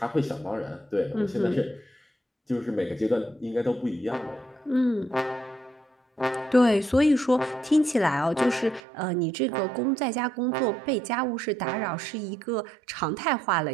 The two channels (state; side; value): drops out; left; at 8.8 s